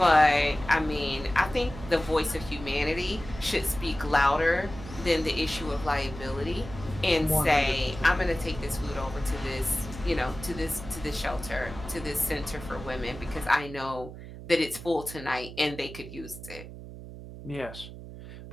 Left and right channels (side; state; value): right; noise; hum, 13 dB below the sound